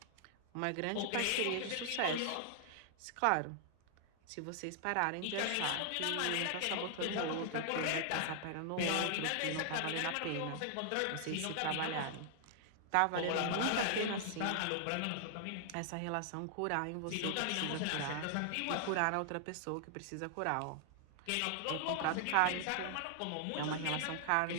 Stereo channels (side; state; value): both; different; correlation 0.00